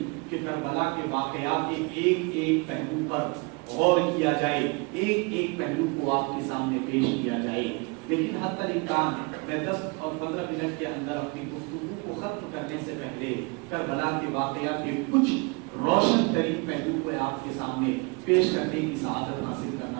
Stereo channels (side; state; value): left; quieter; 29.3 dB